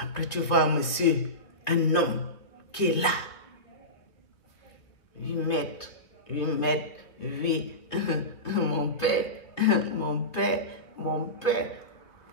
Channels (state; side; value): late; right; 2.7 ms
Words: tu vois un monsieur, un homme qui est là. 8 mètres. Mon père.